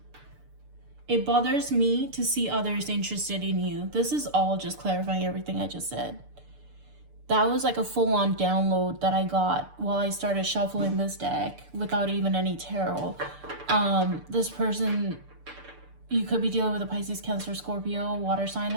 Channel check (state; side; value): late; left; 6.8 ms